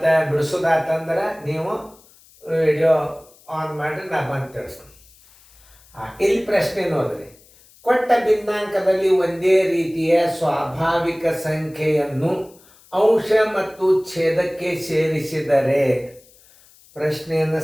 ಬಿಡಿಸೋದಾತಂದ್ರೆ ನೀವು ವಿಡಿಯೋ ಆನ್ ಮಾಡಿರಿ, ನಾ ಬಂದು ತಿಳಿಸ್ತೀನಿ. ಇಲ್ಲಿ ಪ್ರಶ್ನೆ ನೋಡ್ರಿ. ಕೊಟ್ಟ ಭಿನ್ನಾಂಕದಲ್ಲಿ ಒಂದೇ ರೀತಿಯ ಸ್ವಾಭಾವಿಕ ಸಂಖ್ಯೆಯನ್ನು ಅಂಶ ಮತ್ತು ಛೇದಕ್ಕೆ ಸೇರಿಸಿದರೆ, ಪ್ರಶ್ನೆಯನ್ನು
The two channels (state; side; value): noise; left; hiss, 27 dB below the sound